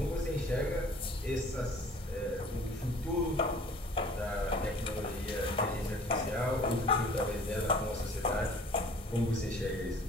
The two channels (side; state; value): both; normal; correlation 0.50